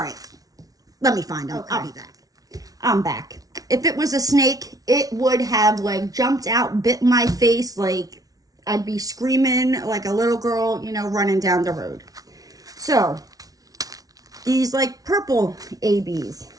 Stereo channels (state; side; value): late; left; 0.18 ms